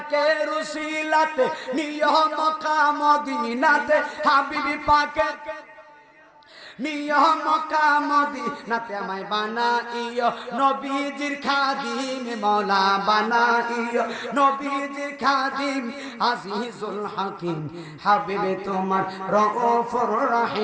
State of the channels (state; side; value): identical; both; correlation 1.00